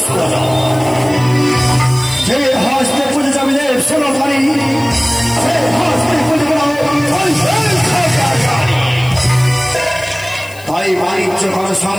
যে হস্তে পুজো যাবে শোনো পারি তাই বাণিজ্য করা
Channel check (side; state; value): left; noise; hiss, 21 dB below the sound